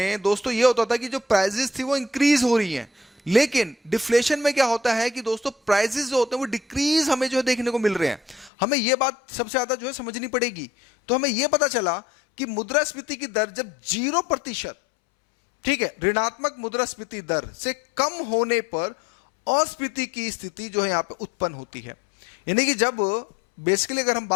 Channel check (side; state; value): right; drops out; at 8.5 s